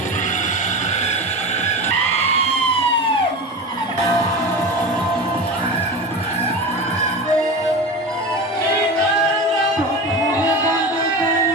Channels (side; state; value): both; normal; correlation 0.27